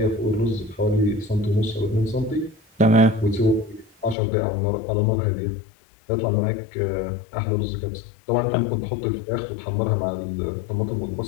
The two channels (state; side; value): drops out; right; at 4.2 s